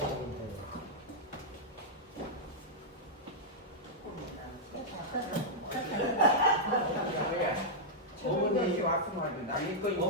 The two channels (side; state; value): both; normal; correlation -0.07